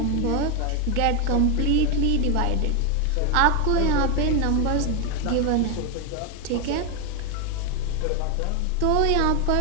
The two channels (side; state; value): both; different; correlation 0.02